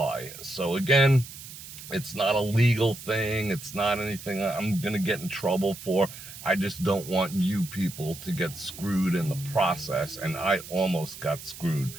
So again, it's not a legal thing. It's not anything I'm going to get in trouble for. I just don't want you people to get screwed in the process, and I almost got screwed.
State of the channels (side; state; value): right; noise; hiss, 14 dB below the sound